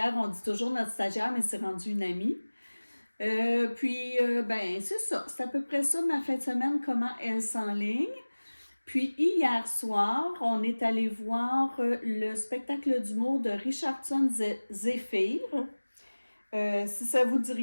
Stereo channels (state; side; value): inverted; both; correlation -1.00